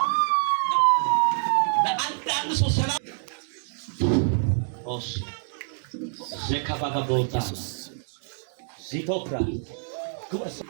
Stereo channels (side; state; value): left; silent; digital silence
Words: በአንዳንድ ሰው ሰላም ኦስ ዘካባጋ ቦታ ዚቶፕራ ጉስ